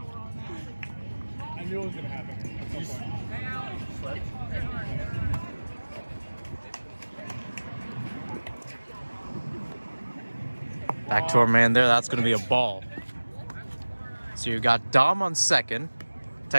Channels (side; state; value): both; inverted; correlation -1.00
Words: I knew it was going to happen at some point. Back to our man there. That's going to be a ball. So you got Dom on second,